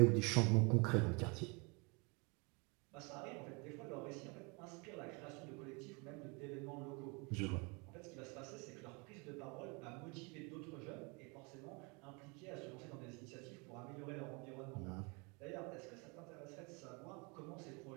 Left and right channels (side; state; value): left; quieter; 30.5 dB